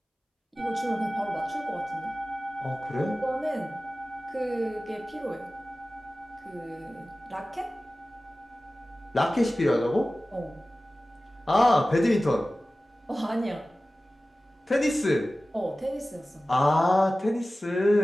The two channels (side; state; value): both; normal; correlation 0.96